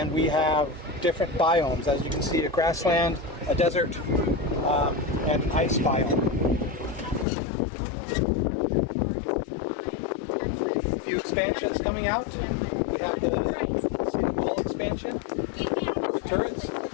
we have different biomes. As you can see, a grassland, a desert, and an ice biome. A few expansions coming out. We have the small expansion with turrets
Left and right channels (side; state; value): right; drops out; at 7.2 s